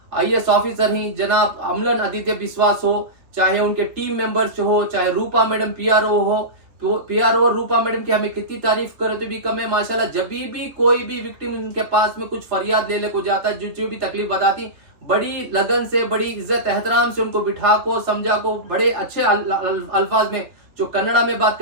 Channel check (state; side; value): late; left; 3.1 ms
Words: IAS ऑफिसर हैं जनाब अमलन आदित्य विश्वास हो, चाहे उनके टीम मेंबर्स हो, चाहे रूपा मैडम PRO हो, तो PRO और रूपा मैडम की हमें कितनी तारीफ करे तो भी कम है माशाल्लाह। जब भी कोई भी विक्टिम उनके पास में कुछ फरियाद ले को जाता है, जो भी तकलीफ बताती, बड़ी लगन से, बड़ी इज्जत एहतराम से उनको बिठा को समझा को बड़े अच्छे अल्फाज में, जो कन्नड़ा में बात